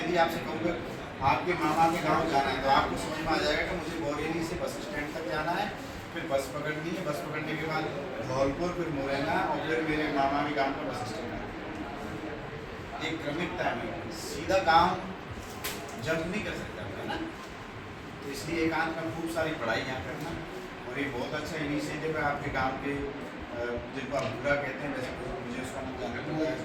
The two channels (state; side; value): identical; both; correlation 1.00